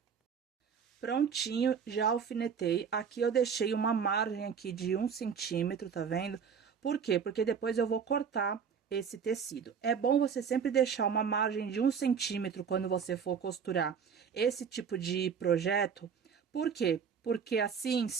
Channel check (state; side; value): quieter; left; 6.8 dB